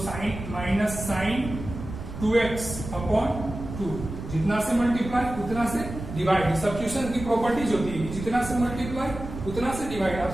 sin minus sin 2x upon 2। जितना से मल्टीप्लाई उतना से डिवाइड, सब्स्टिट्यूशन की प्रॉपर्टीज होती है, जितना से मल्टीप्लाई उतना से डिवाइड। आप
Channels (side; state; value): right; noise; rumble, 9 dB below the sound